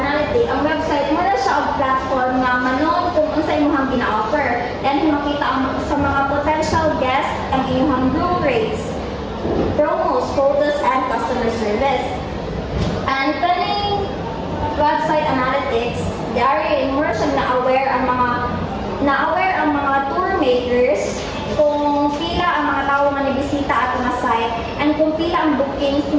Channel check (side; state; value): both; identical; correlation 1.00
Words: ang website mo na siya ang platform na manon kung unsa imong gina-offer and makita sa mga potential guests ang inyong room rates, promos, photos, and customer service. And kaning website analytics, dari mo na siya na-aware ang mga tour makers kung pila ang mga tao nga nibisita ato nga site and kung pila ang bookings